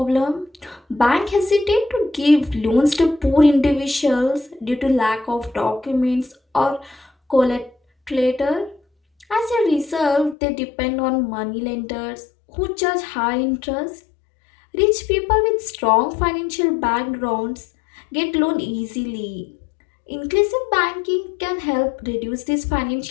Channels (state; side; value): drops out; right; at 10.4 s